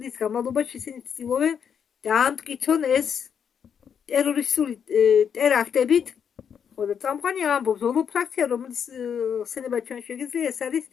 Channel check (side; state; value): right; quieter; 7.6 dB